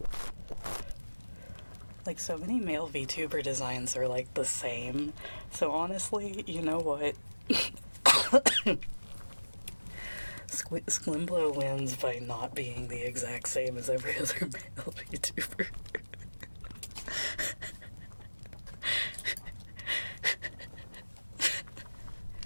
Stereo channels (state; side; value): inverted; both; correlation -1.00